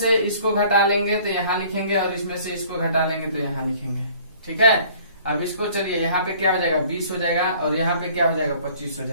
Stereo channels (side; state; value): both; inverted; correlation -0.53